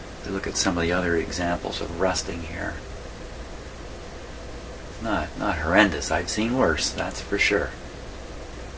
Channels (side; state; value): both; identical; correlation 1.00